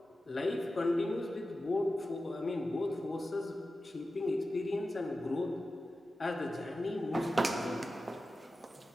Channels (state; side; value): normal; both; correlation 0.93